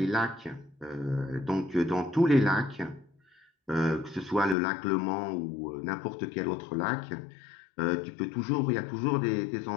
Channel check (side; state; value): right; drops out; at 4.5 s